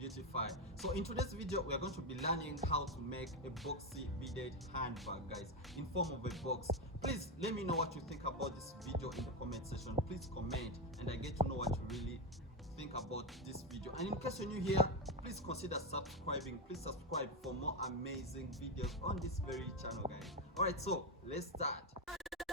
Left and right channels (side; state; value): both; normal; correlation 0.10